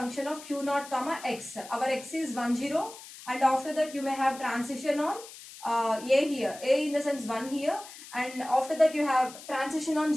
of q naught comma x. Our x is 10, and after that you may have transition on a here. A in the sense 1 here, and after that you have transition on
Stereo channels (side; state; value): left; noise; hiss, 16 dB below the sound